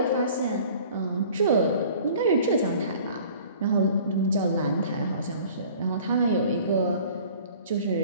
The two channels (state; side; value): inverted; both; correlation -0.48